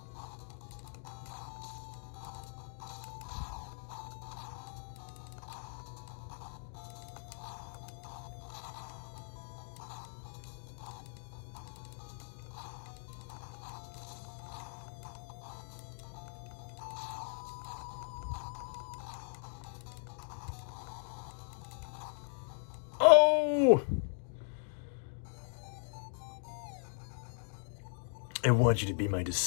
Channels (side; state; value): right; silent; digital silence